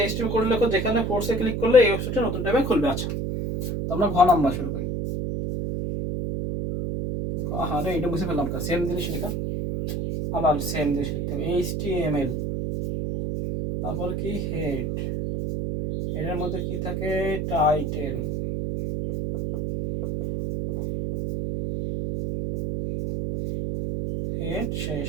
এইচটিএমএল কোড লেখো, যেখানে ফোর্সে ক্লিক করলে এই ওয়েবসাইটে নতুন ট্যাবে খুলবে। আচ্ছা, তো আমরা ঘ নাম্বার শুরু করি। হ্যাঁ রে, এটা বুঝে ফেললাম, সেম জিনিস লেখা, আবার সেম জিনিস লিখতে হবে, এইচটিএমএল, তারপর কি হেড, এর মধ্যে কি থাকে, টাইটেল, হেড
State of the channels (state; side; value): noise; right; hum, 1 dB below the sound